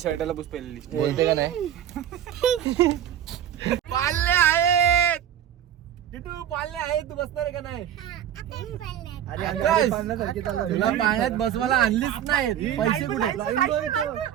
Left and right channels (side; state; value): left; quieter; 10.5 dB